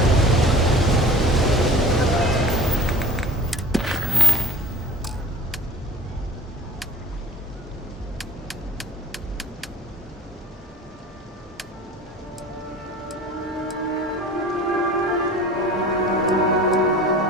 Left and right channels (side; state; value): both; normal; correlation 0.44